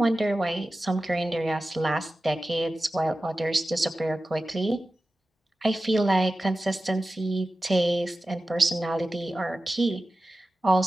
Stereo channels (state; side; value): normal; both; correlation 0.94